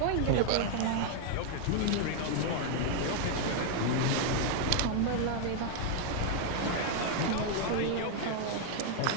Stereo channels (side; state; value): both; different; correlation 0.00